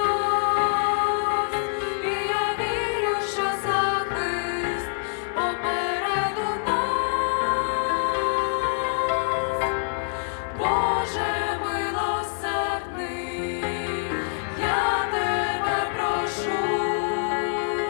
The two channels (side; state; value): right; silent; digital silence